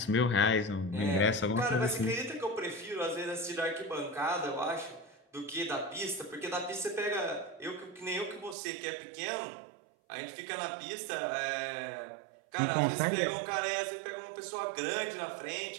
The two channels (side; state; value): left; drops out; at 8.6 s